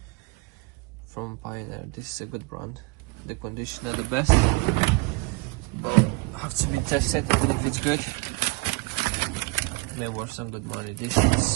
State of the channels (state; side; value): quieter; left; 25.1 dB